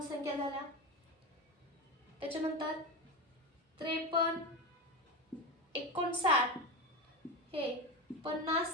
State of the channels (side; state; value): both; normal; correlation 0.19